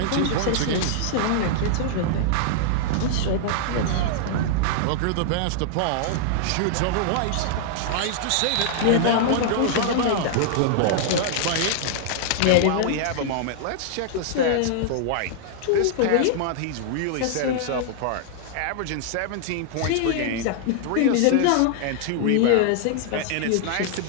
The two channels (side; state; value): both; different; correlation -0.01